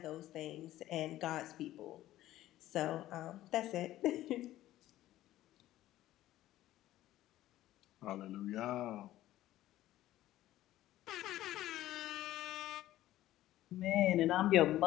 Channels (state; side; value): quieter; right; 14.5 dB